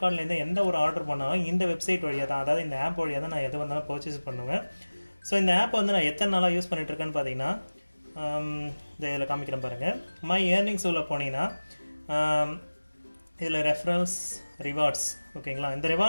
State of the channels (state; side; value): inverted; both; correlation -1.00